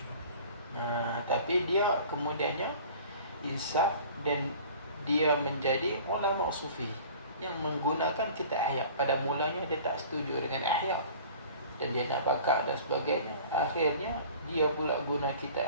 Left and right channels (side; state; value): both; inverted; correlation -0.45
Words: Tapi dia kemudiannya insaf dan dia menjadi ulama sufi yang menggunakan kitab Ihya. Pada mulanya dia tak setuju dengan Ihya dan dia nak bakar dan sebagainya. Akhirnya dia pula guna kitab